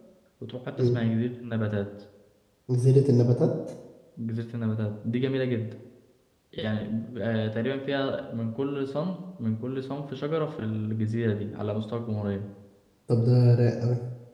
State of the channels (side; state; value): both; identical; correlation 1.00